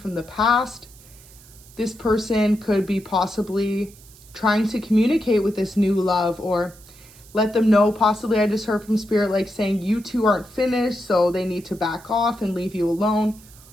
the past. This person could be possibly trying to communicate with this new love, or let them know, possibly I just heard from spirit like saying you two aren't finished, so they need to back off and leave you alone,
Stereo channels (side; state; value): right; noise; hiss, 23 dB below the sound